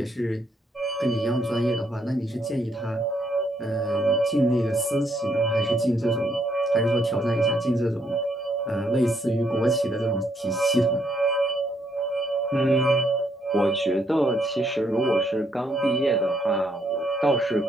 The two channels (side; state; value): both; normal; correlation 0.72